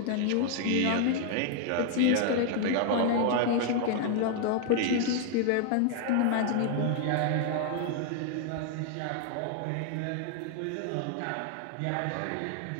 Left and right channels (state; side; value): different; both; correlation 0.00